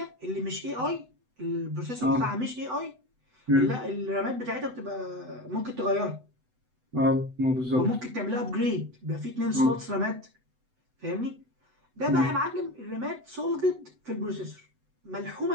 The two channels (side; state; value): left; late; 8.0 ms